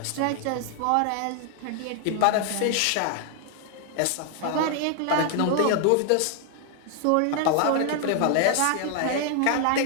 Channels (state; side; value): different; both; correlation 0.00